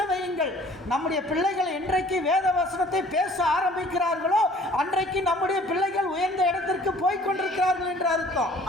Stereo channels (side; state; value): both; normal; correlation 0.53